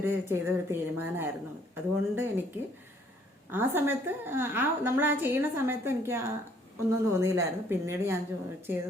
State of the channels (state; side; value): normal; both; correlation 0.63